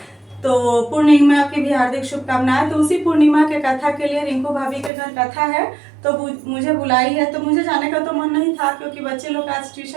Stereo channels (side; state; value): left; drops out; at 4.9 s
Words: तो पूर्णिमा की भी हार्दिक शुभकामनाएं। तो उसी पूर्णिमा के कथा के लिए रिंकू भाभी के घर कथा है, तो मुझे बुलाई है। तो मुझे जाने का तो मन नहीं था क्योंकि बच्चे लोग का आज